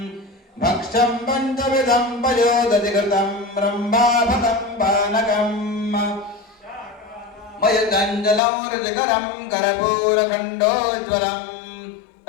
भक्ष्यं पञ्चविधं पयोदधिकृतं ब्रह्माभतं पानकम् मयुतञ्जलं रुचिकरं कर्पूरखण्डोज्ज्वलं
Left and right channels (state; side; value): drops out; right; at 8.4 s